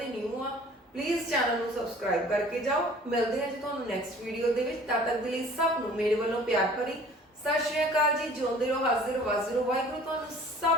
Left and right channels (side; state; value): both; normal; correlation 0.49